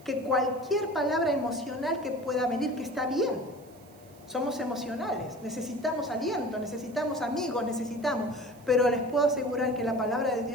que cualquier palabra emocional que pueda venir, que está bien. Somos emocionales, necesitamos aliento, necesitamos amigos, pero les puedo asegurar que la palabra de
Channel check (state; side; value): noise; right; hiss, 27 dB below the sound